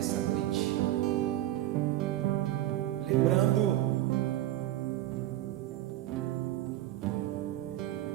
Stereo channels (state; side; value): quieter; left; 14.5 dB